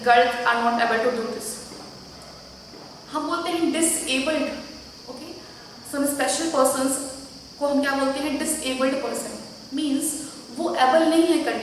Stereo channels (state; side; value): identical; both; correlation 1.00